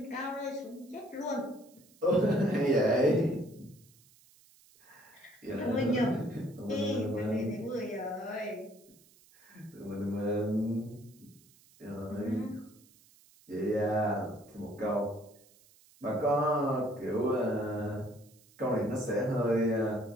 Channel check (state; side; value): noise; right; hiss, 28 dB below the sound